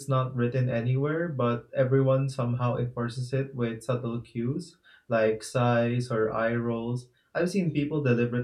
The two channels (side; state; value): both; identical; correlation 1.00